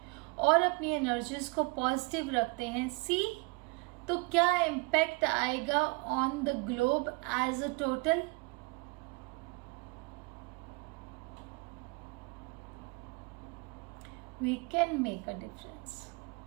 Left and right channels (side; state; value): left; quieter; 29.4 dB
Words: और अपनी एनर्जीज को पॉजिटिव रखते हैं, सी तो क्या इम्पैक्ट आएगा on the globe as a total. We can make a difference.